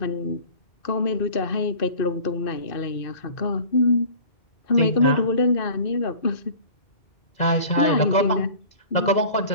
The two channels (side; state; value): right; late; 2.0 ms